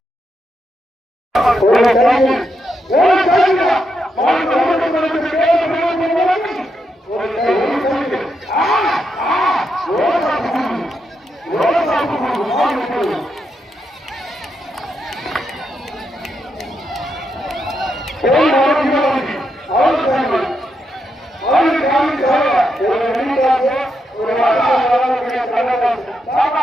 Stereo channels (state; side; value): normal; both; correlation 0.82